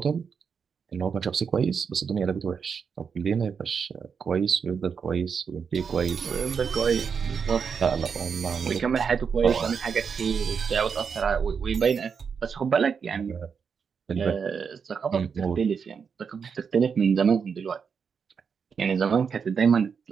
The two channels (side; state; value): left; quieter; 6.3 dB